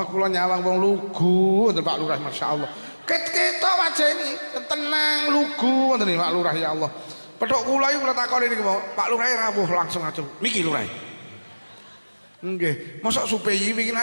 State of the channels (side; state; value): both; inverted; correlation -1.00